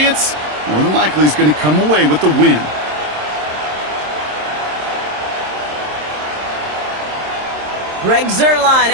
more than likely is going to come away with the win. Greg Zuerlein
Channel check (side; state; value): left; late; 27 ms